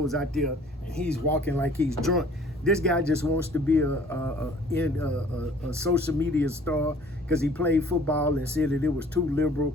out there and he's walking like he's drunk. This guy just wants to be a social media star because he played football and said that it was too liberal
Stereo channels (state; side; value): normal; both; correlation 0.53